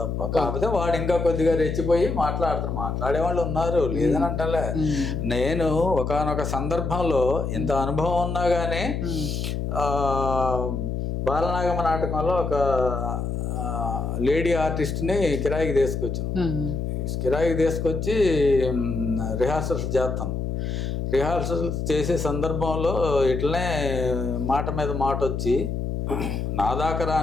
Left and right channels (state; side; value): noise; left; hum, 2 dB below the sound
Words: కాకపోతే వాడు ఇంకా కొద్దిగా రెచ్చిపోయి మాట్లాడే వాళ్ళు ఉన్నారు, లేదని అంటలే. నేను ఒకానొక సందర్భంలో ఇంత అనుభవం ఉన్నా కానీ బాలనాగమ్మ నాటకంలో ఒక లేడీ ఆర్టిస్ట్ని కిరాయికి తీసుకొచ్చాను. కిరాయికి తీసుకొచ్చి రిహార్సల్స్ చేస్తాను. రిహార్సల్ చేసే సందర్భంలో ఇట్లనే మాట మీద మాట వచ్చి నా దాకా